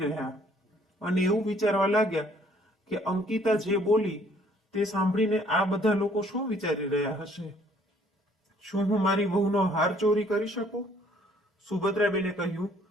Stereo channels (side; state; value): both; normal; correlation 0.61